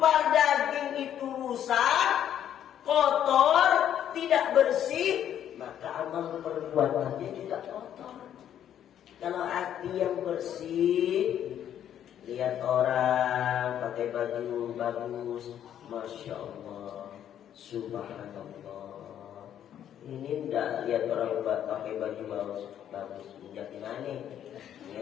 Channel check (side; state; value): right; quieter; 10.2 dB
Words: daging itu rusak, kotor, tidak bersih, maka amal perbuatannya juga kotor. Kalau hati yang bersih, lihat orang pakai baju bagus, Masya Allah, Subhanallah. Ini enggak lihat orang pakai baju bagus, jadi mana?